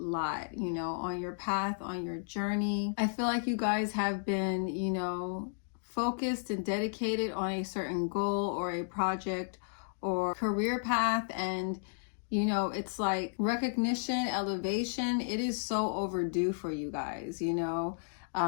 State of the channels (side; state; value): right; silent; digital silence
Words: you know, on your path, on your journey. I feel like you guys have been, you know, focused and dedicated on a certain goal or a project or career path, and you know, it's like recognition, elevation, it is so overdue for you guys, you know.